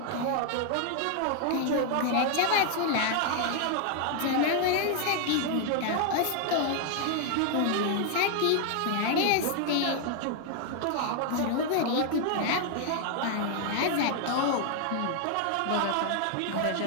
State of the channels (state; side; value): different; both; correlation 0.00